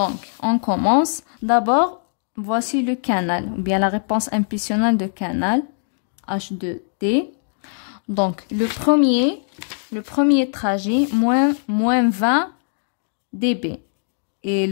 on commence. D'abord, voici le canal, ou bien la réponse impulsionnelle de canal, H2T. Donc, le premier trajet, moins 20 dB. Et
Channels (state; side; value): silent; right; digital silence